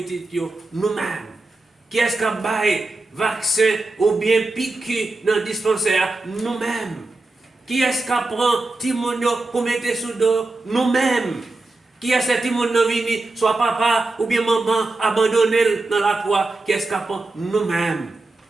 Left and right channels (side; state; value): left; quieter; 3.1 dB